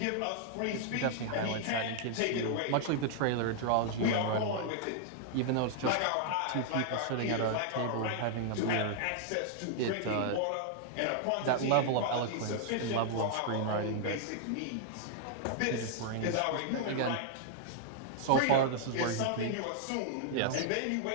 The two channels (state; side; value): different; both; correlation -0.01